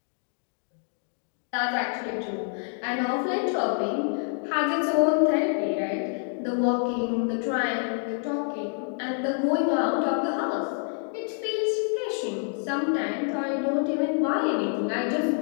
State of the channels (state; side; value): silent; right; 56 dB below the other